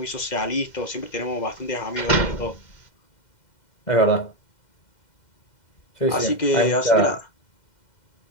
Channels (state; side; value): late; right; 2.1 ms